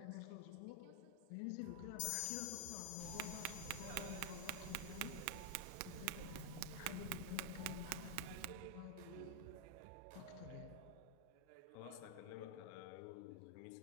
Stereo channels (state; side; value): different; both; correlation 0.00